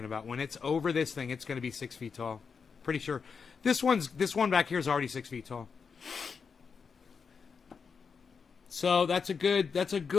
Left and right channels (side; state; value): right; quieter; 5.7 dB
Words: about. When it's over this thing, it's going to be 6 feet tall. Pretty sure. This one back here is already 6 feet tall. So that's a